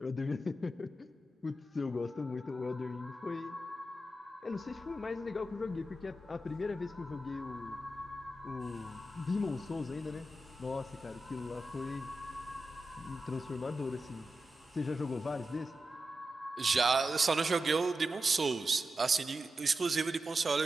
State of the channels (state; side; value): normal; both; correlation 0.90